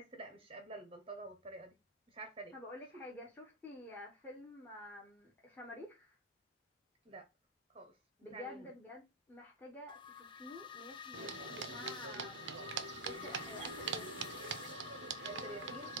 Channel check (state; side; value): normal; both; correlation -0.04